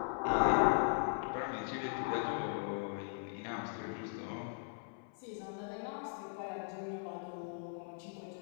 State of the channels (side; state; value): right; silent; 52 dB below the other